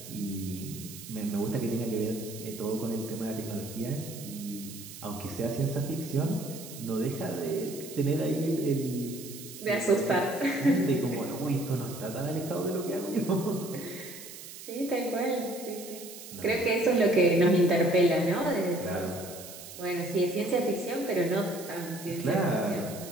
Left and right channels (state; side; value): noise; right; hiss, 13 dB below the sound